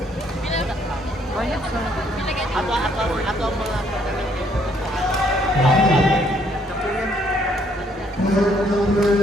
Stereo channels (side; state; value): both; normal; correlation 0.67